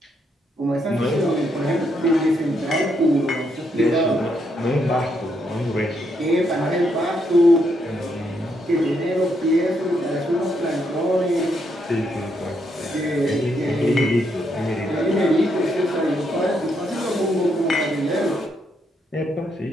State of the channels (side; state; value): both; normal; correlation 0.77